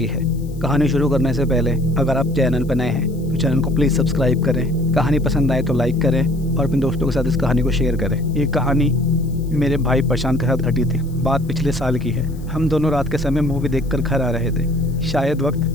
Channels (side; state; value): left; noise; hiss, 26 dB below the sound